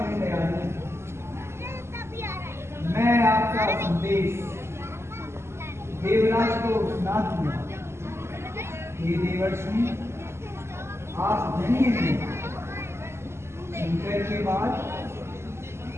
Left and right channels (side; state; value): left; late; 0.13 ms